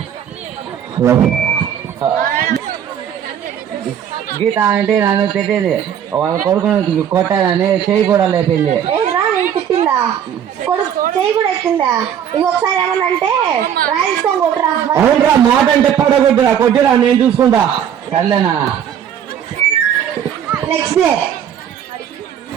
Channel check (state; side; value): quieter; left; 9.1 dB